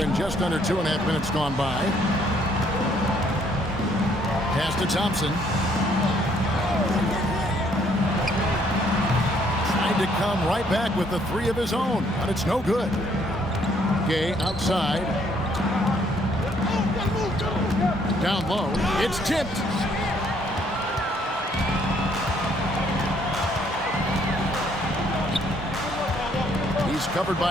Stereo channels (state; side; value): normal; both; correlation 0.66